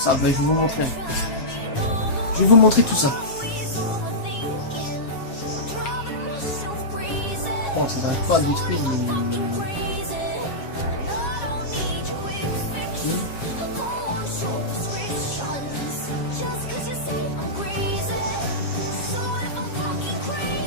ça. Je vais vous montrer. Je vais vous montrer tout ça. Bon, ça n'arrive pas à détruire.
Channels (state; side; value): late; right; 7.3 ms